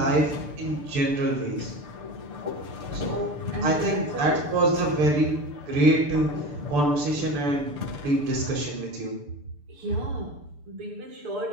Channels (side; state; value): left; late; 6.8 ms